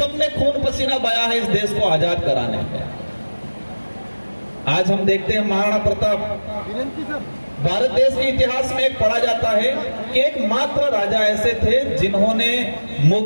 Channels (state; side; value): inverted; both; correlation -1.00